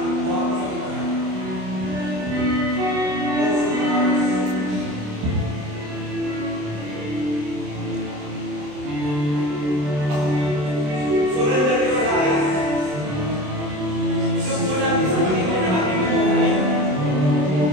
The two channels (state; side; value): late; left; 27 ms